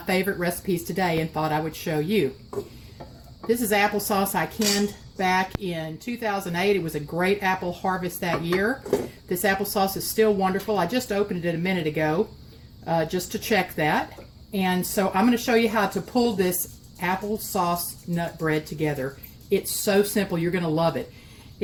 recipes today and thought I would show you. This is applesauce I canned back in 2008. It was a great apple harvest that year. This applesauce is still wonderful. I just opened it a minute ago just to check that. And so I'm going to show you how to pull this applesauce nut bread together. It's so simple. You're going to love it.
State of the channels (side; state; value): both; identical; correlation 1.00